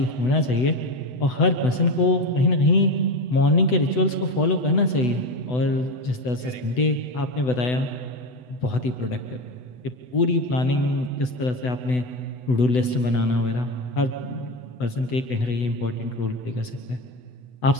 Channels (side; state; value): right; late; 8.0 ms